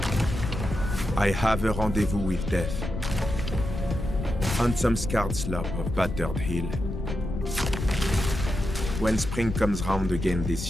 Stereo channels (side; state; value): left; noise; rumble, 5 dB below the sound